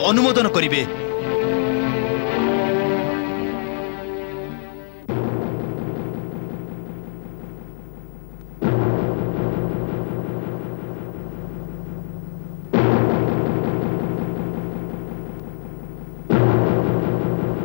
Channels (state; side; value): silent; right; 64 dB below the other